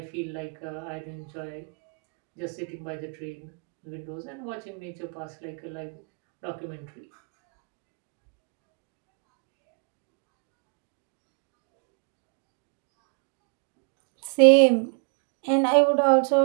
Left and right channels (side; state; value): left; quieter; 37.2 dB